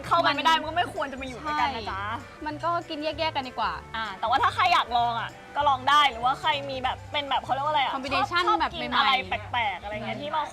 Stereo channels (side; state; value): both; identical; correlation 1.00